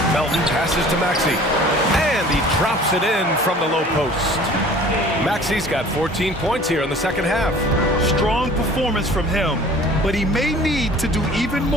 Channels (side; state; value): both; normal; correlation 0.47